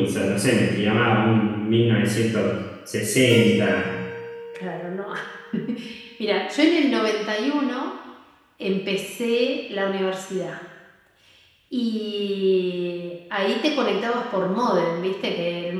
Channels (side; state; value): both; identical; correlation 1.00